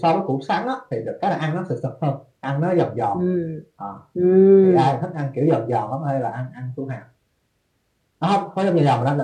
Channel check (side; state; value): both; identical; correlation 1.00